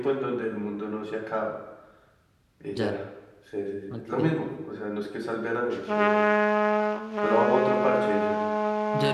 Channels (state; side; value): identical; both; correlation 1.00